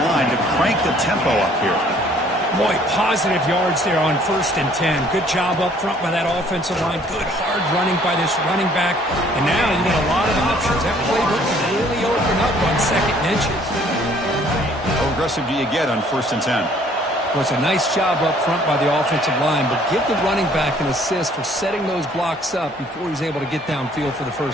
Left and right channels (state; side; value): normal; both; correlation 0.59